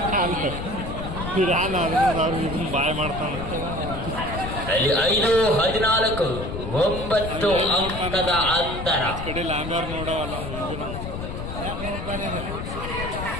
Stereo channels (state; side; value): noise; left; rumble, 6 dB below the sound